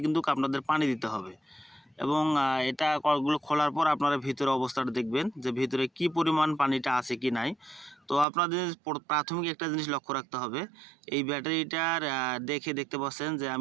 কিন্তু আপনাদের পানি দিতে হবে এবং এটা কর্কগুলো খোলার পর আপনারা ভিতরে অবস্থাটা দেখবেন যে ভিতরে কি পরিমাণ পানিটা আছে কি নাই। তো আপনাদের প্রাথমিক একটা জিনিস লক্ষ্য রাখতে হবে, এই ব্যাটারিটার দেখতে পাচ্ছেন যে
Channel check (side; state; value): left; drops out; at 8.2 s